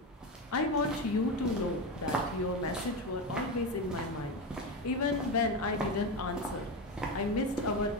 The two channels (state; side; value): normal; both; correlation 0.17